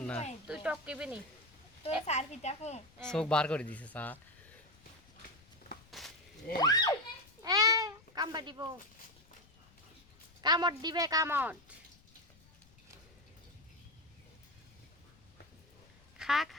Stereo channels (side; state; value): left; noise; rumble, 28 dB below the sound